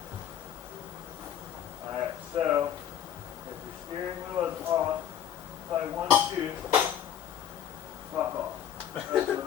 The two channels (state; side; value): quieter; right; 9.7 dB